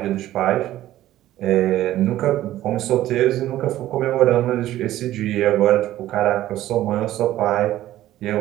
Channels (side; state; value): left; quieter; 14.1 dB